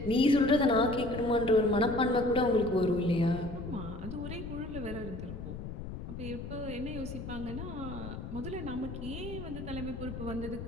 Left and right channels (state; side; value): noise; left; rumble, 8 dB below the sound